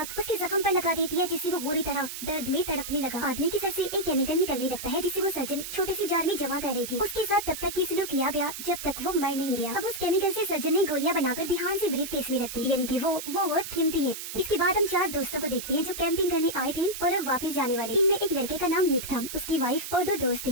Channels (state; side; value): noise; right; hiss, 8 dB below the sound